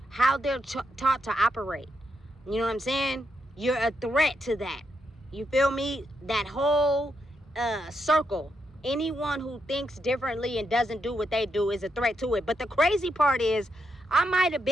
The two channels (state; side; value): normal; both; correlation 0.82